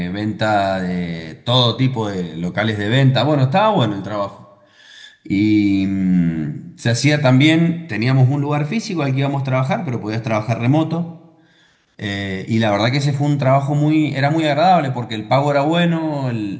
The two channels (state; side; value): identical; both; correlation 1.00